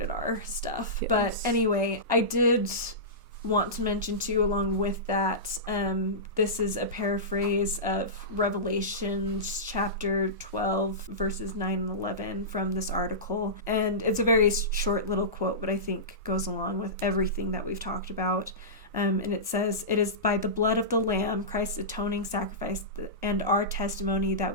R stuff. Yes. But anyway, I did want to mention too, along with that, this is a paraphrase of Revelations chapter 12 verses 9 and 11 from this article, and it's a very short little quote, but I think goes along with everything that we've talked about. And it says, "It is by the blood of the Lamb, Christ's atoning sacrifice, and our testimony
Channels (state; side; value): normal; both; correlation -0.19